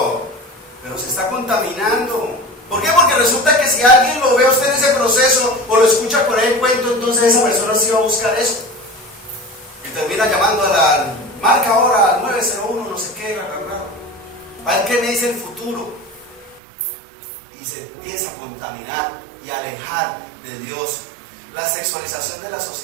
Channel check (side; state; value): left; drops out; at 16.6 s